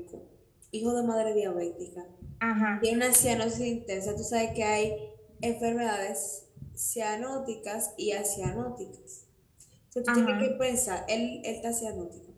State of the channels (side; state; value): both; identical; correlation 1.00